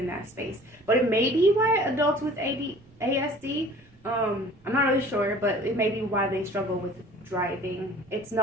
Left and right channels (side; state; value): right; noise; rumble, 28 dB below the sound